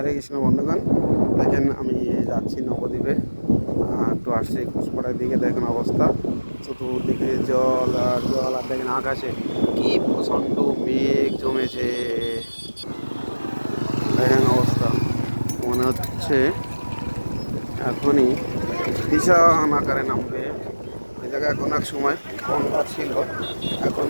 কৃষ্ণ বন্ধুগণ, দেখেন আমি যাচ্ছি নবদ্বীপে। একটু আসছি ঘোষপাড়ার দিকে। দেখেন অবস্থা, চতুর্দিকে জল আর জল। আর দেখেন আকাশে কি প্রচণ্ড মেঘ জমেছে। দেখেন অবস্থা, মনে হচ্ছে এখনই বিশাল আকারে নামবে। ওই জায়গায় এখন এক সময় গঙ্গা ছিল, এখন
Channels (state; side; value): inverted; both; correlation -1.00